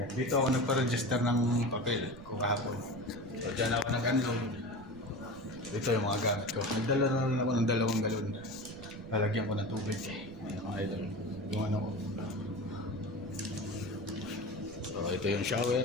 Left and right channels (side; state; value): right; noise; rumble, 18 dB below the sound